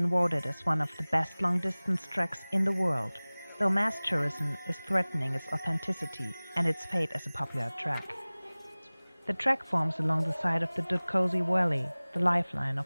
voted as one of the best long-distance treks in the world, though mass tourism is threatening its authenticity and its fate as a popular trek. The trek forms along the side of the Dutkosi Valley, the lifeline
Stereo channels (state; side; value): inverted; both; correlation -1.00